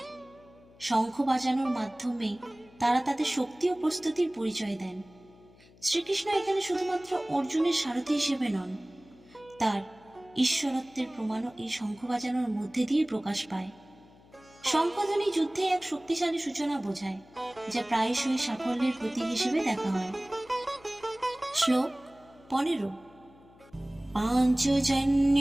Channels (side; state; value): left; noise; hum, 26 dB below the sound